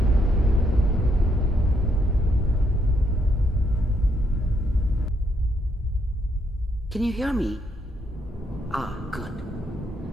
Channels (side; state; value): both; normal; correlation 0.75